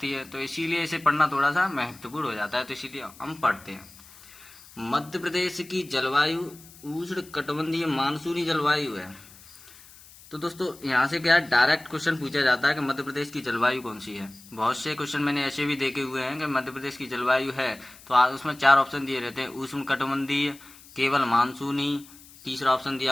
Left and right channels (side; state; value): left; noise; hiss, 22 dB below the sound